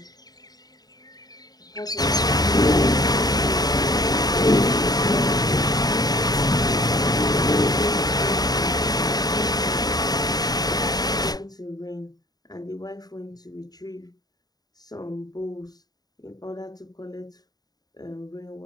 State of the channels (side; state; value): right; late; 0.19 ms